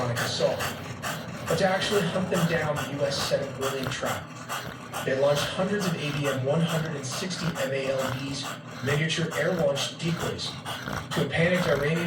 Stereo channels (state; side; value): identical; both; correlation 1.00